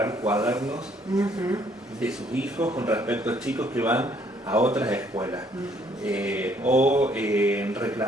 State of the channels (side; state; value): both; normal; correlation 0.64